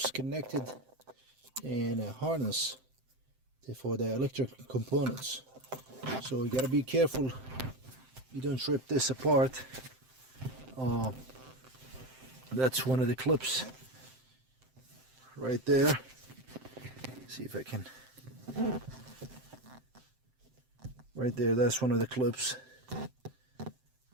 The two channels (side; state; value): left; late; 7.7 ms